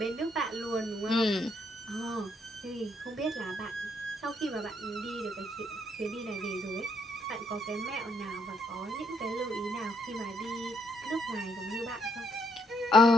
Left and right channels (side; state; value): both; normal; correlation 0.73